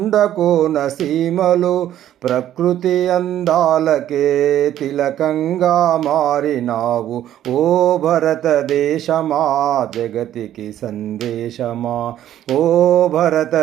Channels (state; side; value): quieter; left; 11.8 dB